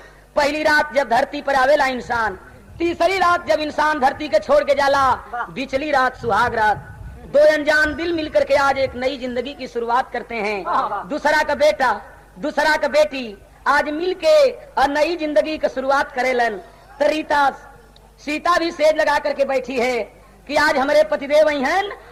पहली रात जब धरती पर आवेला इंसान तीसरी रात जब इंसान धरती के छोड़ के जाला बिचली रात सुहाग रात 2 अनजान दिल मिलकर के आज एक नई जिंदगी की शुरुआत करते हैं। दूसरा का बेटा दूसरा का बेटी आज मिल के और नई जिंदगी की शुरुआत करेलन। तरीता सीता भी सेज लगा करके बैठी है कि आज हमारे पतिदेव हैं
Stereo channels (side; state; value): both; identical; correlation 1.00